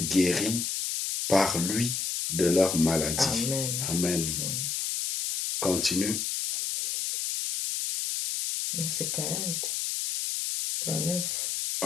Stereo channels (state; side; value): noise; left; hiss, 1 dB below the sound